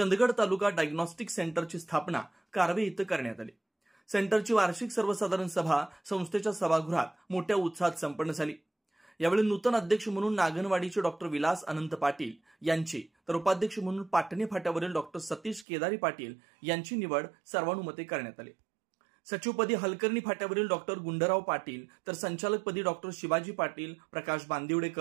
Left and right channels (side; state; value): left; drops out; at 15.7 s